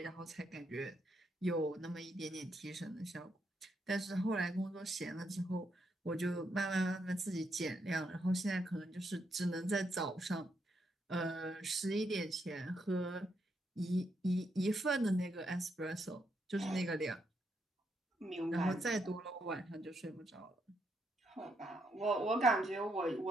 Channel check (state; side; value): normal; both; correlation 0.78